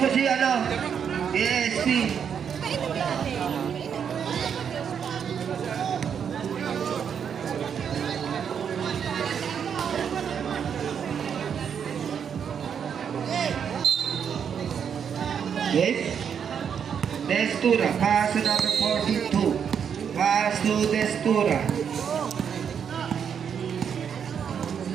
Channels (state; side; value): quieter; left; 7.6 dB